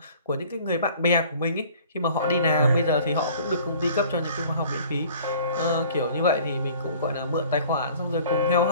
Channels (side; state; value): both; inverted; correlation -0.50